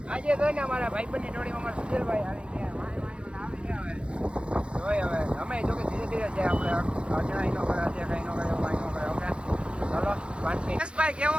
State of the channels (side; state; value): left; late; 0.057 ms